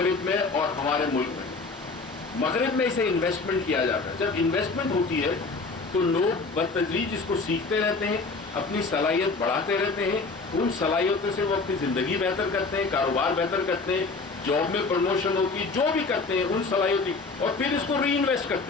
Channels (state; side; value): quieter; right; 4.0 dB